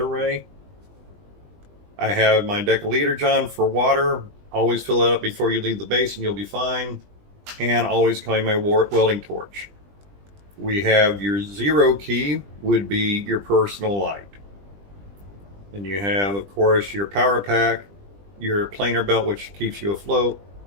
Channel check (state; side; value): late; left; 20 ms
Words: I have my decaliter John for water. Always fill it up before you leave the base and you'll be fine. And always carry my welding torch. We have your zero key would be your personal light. And you have, of course, your power pack, your planer belt, which keeps you afloat,